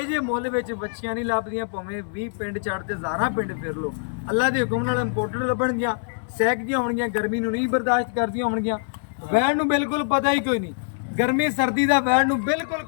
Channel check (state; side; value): silent; right; digital silence